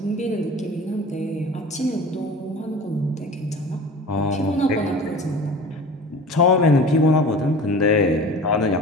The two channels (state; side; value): normal; both; correlation 0.38